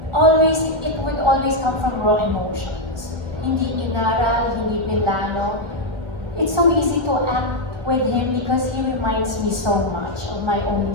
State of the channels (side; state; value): left; late; 1.5 ms